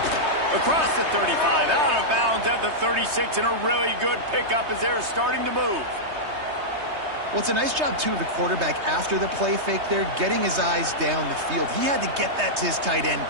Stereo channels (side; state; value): left; late; 3.2 ms